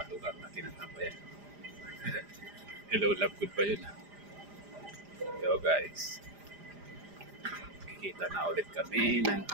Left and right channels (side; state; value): left; late; 5.0 ms